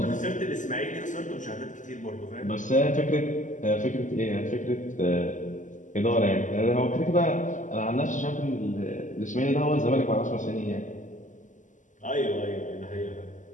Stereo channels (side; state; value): right; late; 0.37 ms